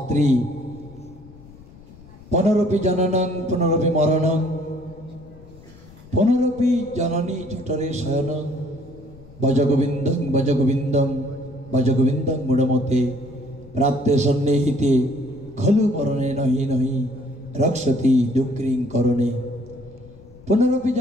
পুনরপি জননং পুনরপি মরণং পুনরপি জননী জঠরে শয়নং ভজগোবিন্দং ভজগোবিন্দং ভজগোবিন্দং মূঢ়মতে প্রাপ্তে সন্নিহিতে খলু মরণে নহি নহি রক্ষতি দুঃখিং করণে। পুনরপি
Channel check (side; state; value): left; noise; rumble, 21 dB below the sound